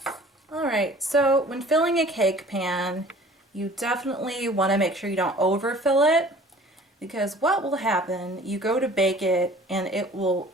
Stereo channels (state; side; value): normal; both; correlation 0.49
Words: Alright, so when filling a cake pan, you definitely want to make sure you don't overfill it, because what will happen, you go to bake it and it will